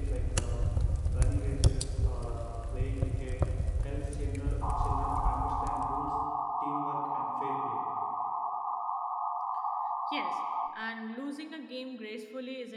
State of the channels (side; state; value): both; identical; correlation 1.00